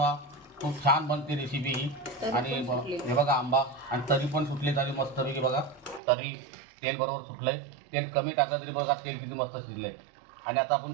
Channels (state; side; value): drops out; left; at 6.0 s